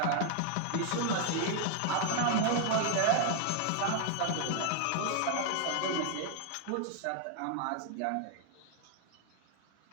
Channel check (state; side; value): different; both; correlation 0.00